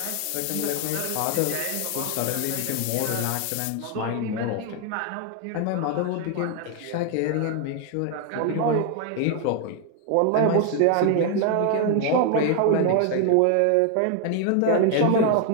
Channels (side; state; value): both; different; correlation 0.00